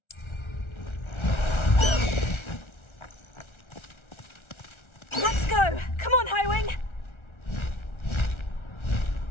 Let's go! Come on, Highwing!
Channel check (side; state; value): right; late; 1.3 ms